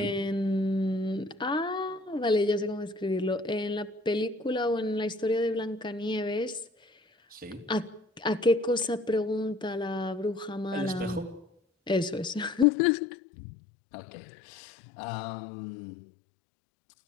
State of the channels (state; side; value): drops out; right; at 12.7 s